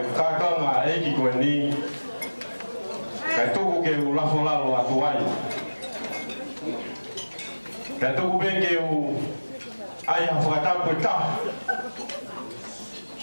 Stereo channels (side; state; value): both; inverted; correlation -1.00